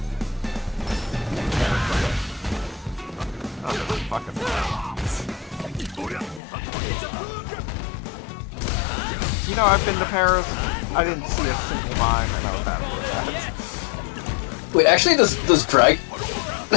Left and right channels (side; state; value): right; drops out; at 6.4 s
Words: You know, I've been to Paris. I didn't see a single mime, and I was happy with that. Wait, actually, does